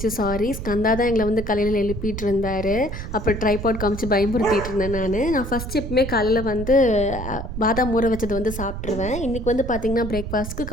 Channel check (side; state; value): right; noise; rumble, 7 dB below the sound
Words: சாரி. ஸ்கந்தா தான் எங்களை வந்து காலையில் எழுப்பிட்டு இருந்தார். அப்புறம் ட்ரைபாட் காமிச்சு பயமுறுத்திட்டு இருந்தேன். நான் ஃபஸ்ட் எப்பவுமே காலையில் வந்து பாதாம் ஊற வச்சது வந்து சாப்பிட்ருவேன். இன்றைக்கி வந்து பார்த்திங்கன்னா பிரேக்ஃபாஸ்ட்டுக்கு